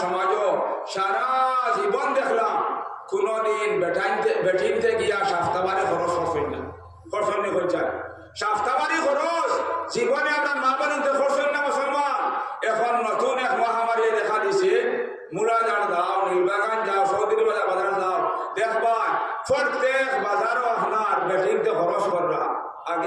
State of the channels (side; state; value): both; identical; correlation 1.00